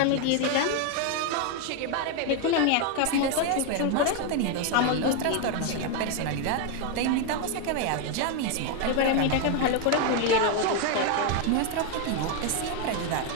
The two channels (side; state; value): both; different; correlation 0.01